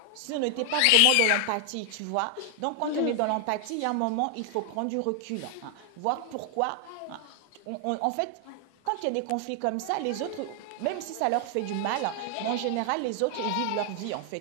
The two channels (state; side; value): different; both; correlation 0.00